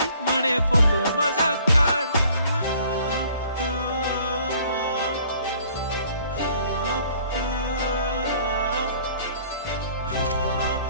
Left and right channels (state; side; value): inverted; both; correlation -0.56